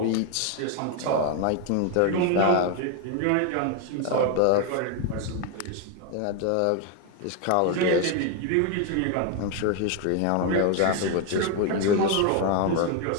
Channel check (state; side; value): different; both; correlation 0.01